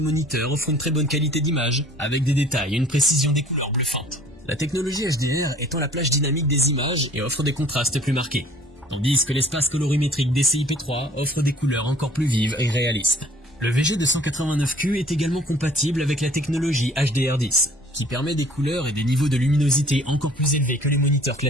offre une très bonne qualité d'image, avec des détails et une précision des couleurs bluffantes. La technologie HDR étend la plage dynamique des images et offre des contrastes plus marqués, tandis que l'espace colorimétrique DCI-P3 offre des couleurs encore plus vives et réalistes. Le VG289Q est également compatible avec la technologie HDR10, qui permet des couleurs et des niveaux de luminosité encore plus élevés que les moniteurs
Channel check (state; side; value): normal; both; correlation 0.52